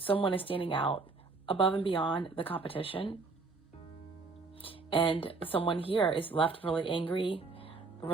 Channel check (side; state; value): left; quieter; 4.1 dB